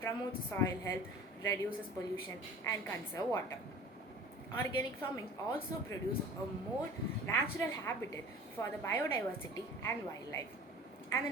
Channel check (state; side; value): normal; both; correlation 0.42